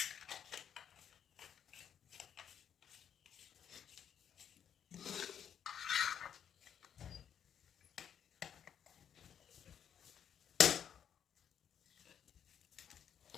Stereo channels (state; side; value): quieter; right; 8.6 dB